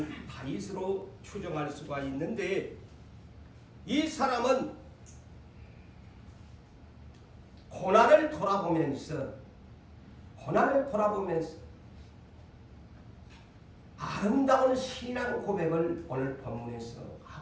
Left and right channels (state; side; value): identical; both; correlation 1.00